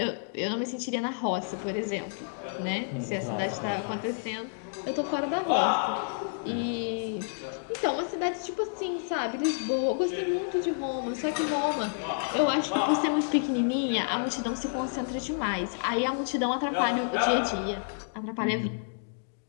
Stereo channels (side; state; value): right; silent; digital silence